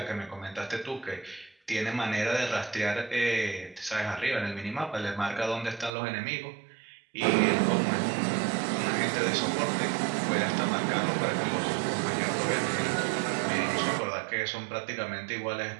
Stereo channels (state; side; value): drops out; left; at 5.9 s